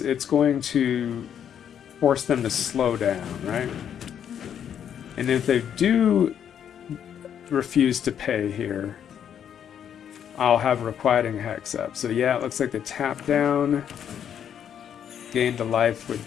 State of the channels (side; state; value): right; quieter; 8.9 dB